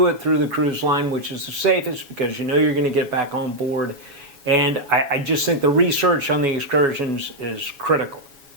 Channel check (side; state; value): left; late; 7.2 ms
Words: it through the cruise line, which is the safest, because you know you're going to get back on board. And I just think the research on the excursions is critical.